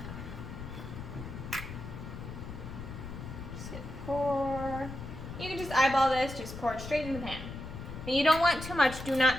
Pour. You can just eyeball this, just pour it straight in the pan. And you don't want too much, do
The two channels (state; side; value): noise; left; rumble, 9 dB below the sound